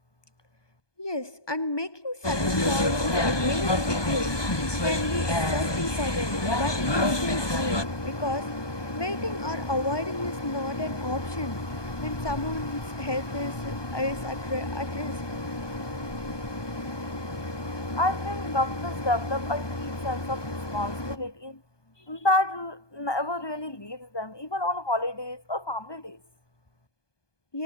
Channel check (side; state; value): right; late; 1.2 ms